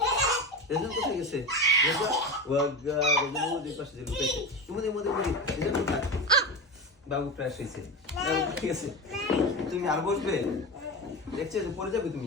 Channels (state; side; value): normal; both; correlation 0.23